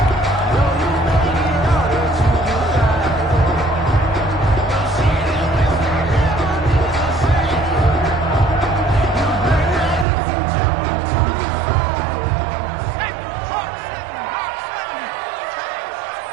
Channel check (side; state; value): left; drops out; at 10.1 s